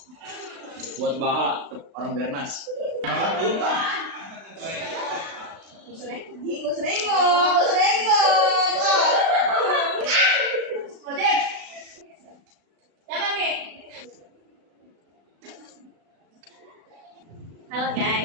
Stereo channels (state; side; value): late; left; 36 ms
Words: buat Baha orang Bernas. Gak usah Ojek. Siapa nih? Halo